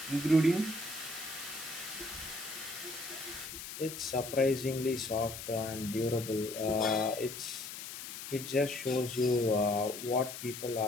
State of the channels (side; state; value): left; noise; hiss, 9 dB below the sound